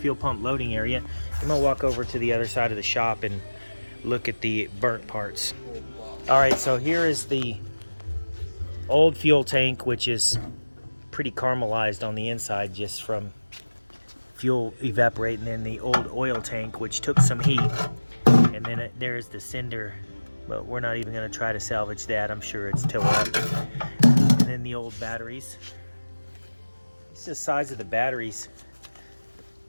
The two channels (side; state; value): both; inverted; correlation -1.00